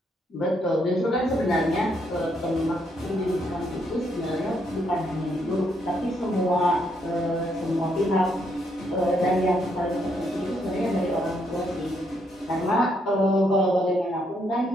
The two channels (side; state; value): both; normal; correlation 0.74